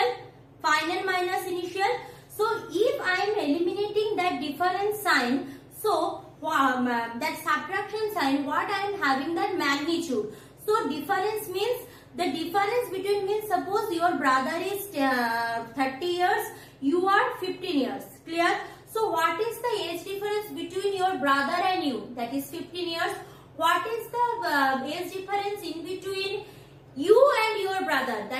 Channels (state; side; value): identical; both; correlation 1.00